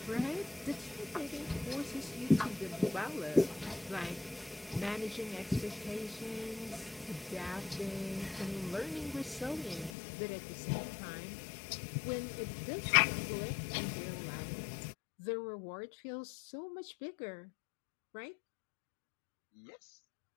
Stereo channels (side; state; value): right; drops out; at 9.9 s